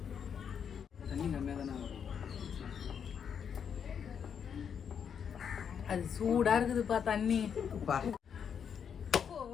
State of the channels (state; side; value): quieter; right; 7.5 dB